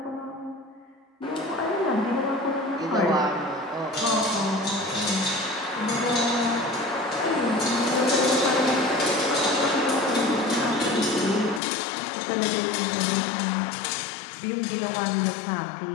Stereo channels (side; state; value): right; drops out; at 11.6 s